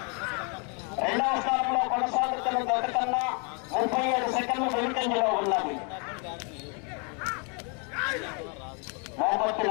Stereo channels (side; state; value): right; quieter; 36.3 dB